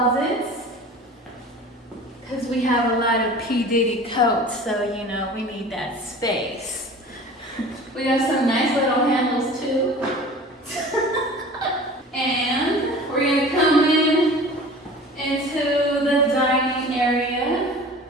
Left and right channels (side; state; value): both; normal; correlation 0.41